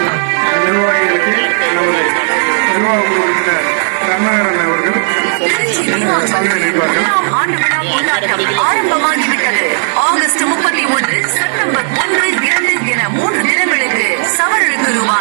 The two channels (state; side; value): silent; left; 69 dB below the other